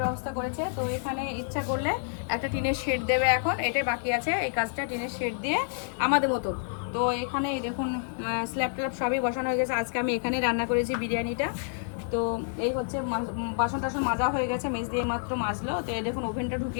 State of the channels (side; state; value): right; silent; digital silence